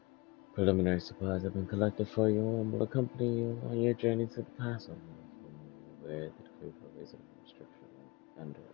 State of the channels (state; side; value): quieter; right; 26.3 dB